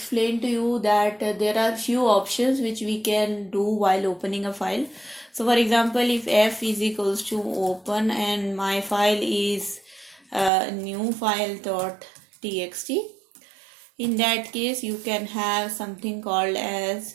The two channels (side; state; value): left; drops out; at 10.5 s